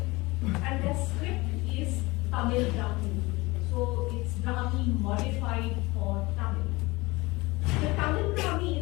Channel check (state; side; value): quieter; right; 22.7 dB